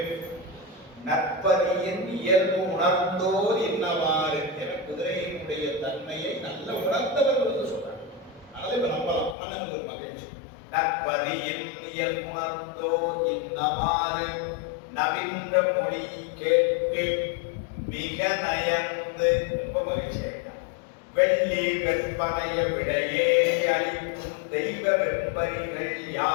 நற்பதியின் இயல்பு உணர்ந்தோர் என்னவாறு என குதிரையினுடைய தன்மையை நல்ல உணர்ந்தவர்கள் என்று சொல்றாங்க. அதனால இப்ப நம்பலாம் மன்னனுக்கு ஒரு மகிழ்ச்சி. நற்பதியின் இயல்பு உணர்ந்தோர் என்னவாறு நவீன மொழி கேட்டு மிக நயந்து ரொம்ப மகிழ்ச்சியா வெள்ளி வெப்பனைய விடையே அளிக்கும் தெய்வ வெண்பரிகள்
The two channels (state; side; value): drops out; right; at 9.3 s